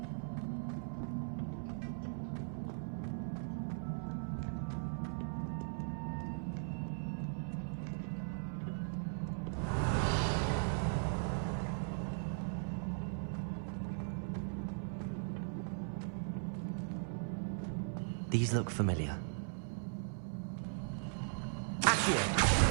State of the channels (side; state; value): left; silent; 52 dB below the other